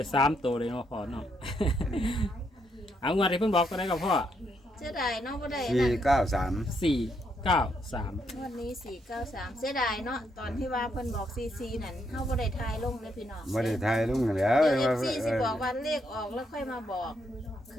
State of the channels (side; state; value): both; normal; correlation 0.76